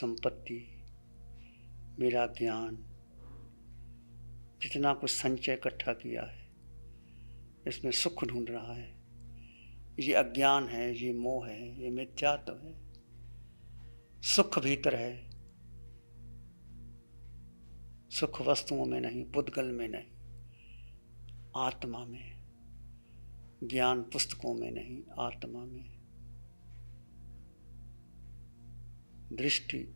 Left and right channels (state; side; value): inverted; both; correlation -1.00